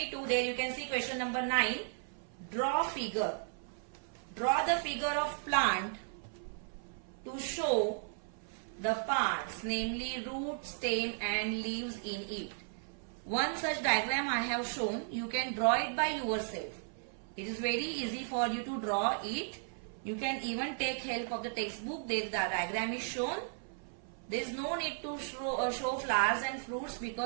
There you can see question number 9. Draw figure. Draw the figure of plant to show the parts, namely root, stem and leaves in it. One such diagram I have shown. You can draw it by yourself. It is very easy for you to draw it. You can even take help of the textbook. There the diagram is shown. There is no need to show flowers and fruits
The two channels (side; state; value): left; silent; 54 dB below the other